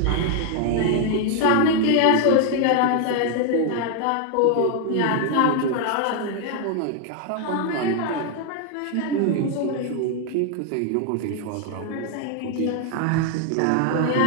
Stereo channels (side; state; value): both; different; correlation 0.00